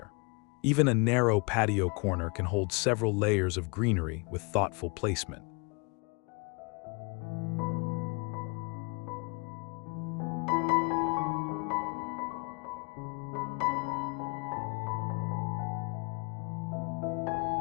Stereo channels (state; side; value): quieter; right; 31.5 dB